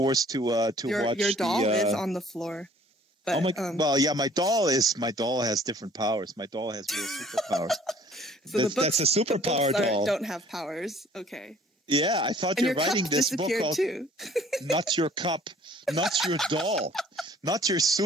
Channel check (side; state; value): both; normal; correlation 0.55